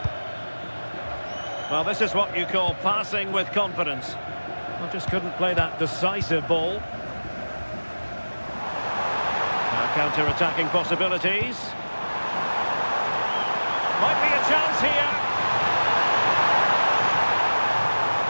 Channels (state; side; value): inverted; both; correlation -1.00